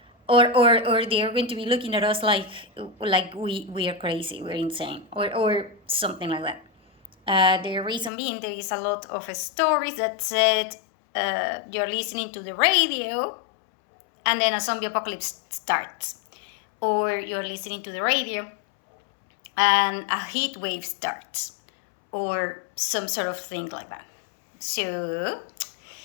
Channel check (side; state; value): right; drops out; at 8.1 s